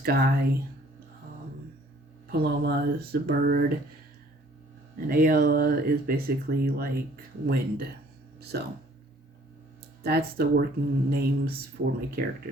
Paloma is the bird. And Ayala is basically like wind. So that's the working names for my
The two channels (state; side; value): normal; both; correlation 0.57